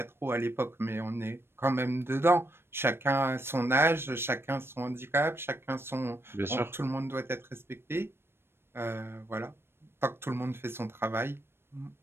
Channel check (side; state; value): left; late; 0.12 ms